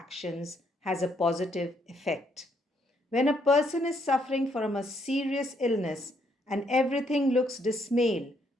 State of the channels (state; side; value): normal; both; correlation 0.72